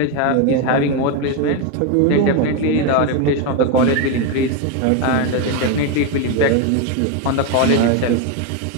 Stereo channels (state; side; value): different; both; correlation 0.02